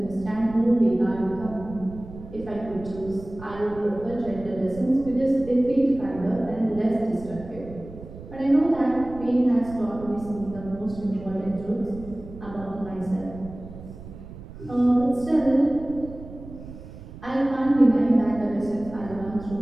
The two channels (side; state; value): right; noise; rumble, 15 dB below the sound